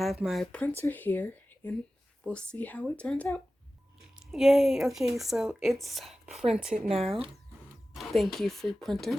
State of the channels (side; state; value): both; normal; correlation 0.95